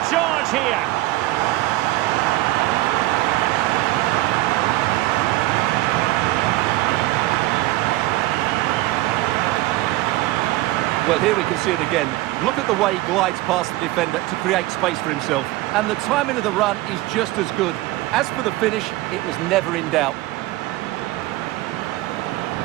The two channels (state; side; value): quieter; left; 17.9 dB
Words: charge here. Well, here we can see it again. Look at the way he glides past the defender to create space for himself. And the timing of the run is just as good. As for the finish, it was never in doubt.